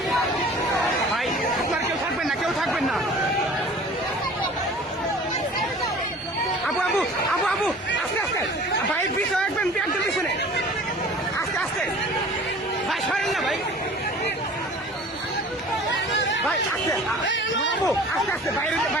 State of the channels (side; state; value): both; normal; correlation 0.45